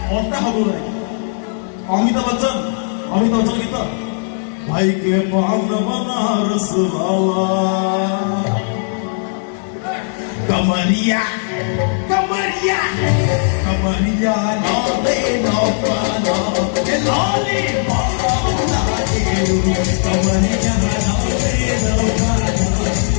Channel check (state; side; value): silent; right; 68 dB below the other